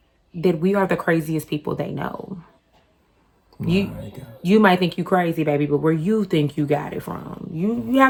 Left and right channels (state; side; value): identical; both; correlation 1.00